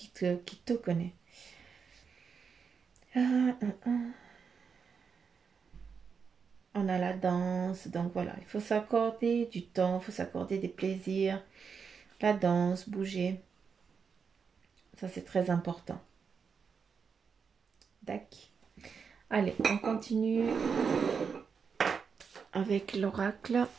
te connais. Ah, ah, ah. On a la danse, donc voilà, il faut s'accorder du temps, il faut s'accorder des plaisirs. La danse, bouger, ça c'est très important. D'accord. Allez, on continue avec l'oracle.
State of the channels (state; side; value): quieter; left; 6.0 dB